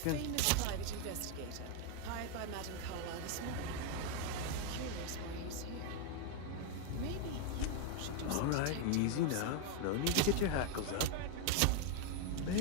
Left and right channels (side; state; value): both; different; correlation 0.01